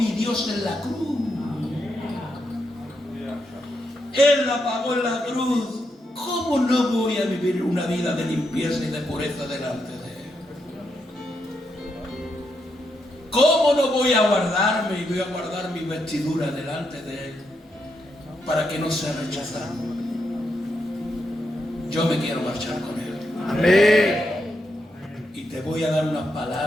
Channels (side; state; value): both; normal; correlation 0.82